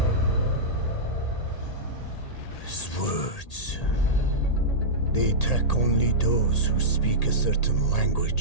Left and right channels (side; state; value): right; late; 1.8 ms